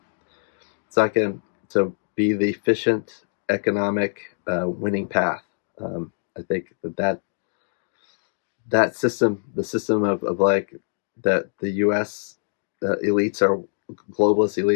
It's not going to be the efficient economic winning path. I think that system, the system of like that the U.S. Elites are globalist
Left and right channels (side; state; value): right; silent; digital silence